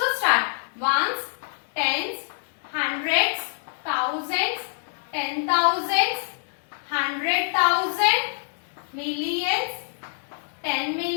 start. Ones, tens, hundreds, thousands, 10,000s, 100,000, millions, 10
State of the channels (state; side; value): silent; right; digital silence